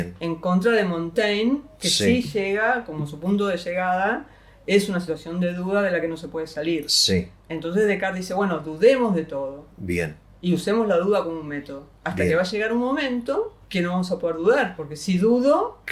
En contra de Montaigne, que sí llega, como su punto de llegada, es una situación de duda de la que no se puede salir. Sí. Entonces Descartes dice, bueno, dudemos de todo. Bien. Y usemos la duda como un método. Hasta Bien. que va a llegar un momento que no vamos a poder dudar, porque si dudo,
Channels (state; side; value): identical; both; correlation 1.00